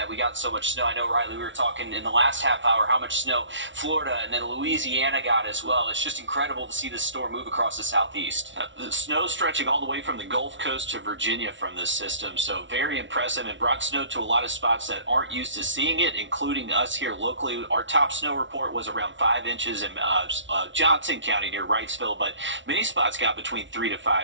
we got so much snow. I know, Riley, we were talking in the last half hour how much snow Florida and then Louisiana got as well. It's just incredible to see this storm move across the southeast. The snow stretching all the way from the Gulf Coast to Virginia from this system, so very impressive, and brought snow to a lot of spots that aren't used to seeing it, including us here locally. Our top snow report was around 5 inches in Johnson County near Wrightsville, but many spots got between 3 to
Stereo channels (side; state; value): left; late; 0.55 ms